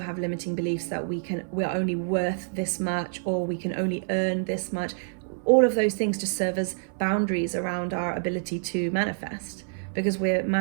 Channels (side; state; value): left; silent; 58 dB below the other